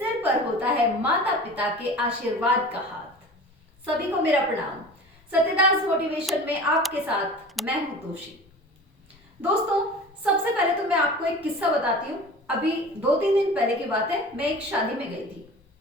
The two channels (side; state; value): both; normal; correlation 0.38